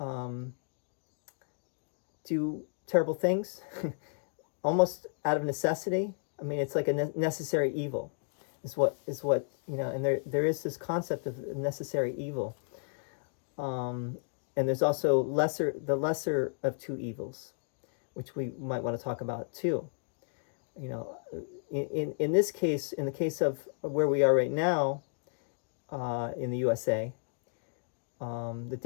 do terrible things, almost out of necessity. I mean, it's like a necessary evil, is what and there is this concept of necessary evil. And there's also the lesser of two evils, which we might want to talk about too. In this case, in the case of where we are right now, in the USA, the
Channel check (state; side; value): silent; right; digital silence